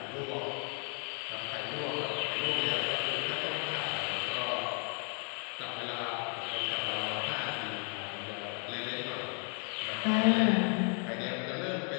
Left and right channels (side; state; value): right; quieter; 38.3 dB